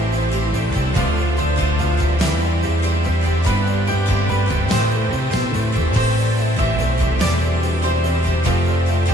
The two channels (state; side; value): normal; both; correlation 0.65